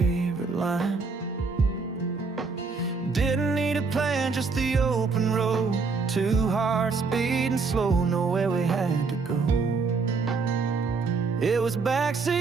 line. Didn't need a plan, just the open road. 2 hearts beating slow, nowhere we had to go. It was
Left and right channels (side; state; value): left; quieter; 4.5 dB